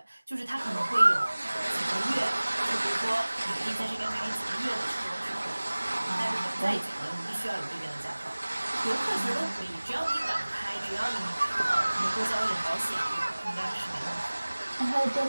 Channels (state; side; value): inverted; both; correlation -1.00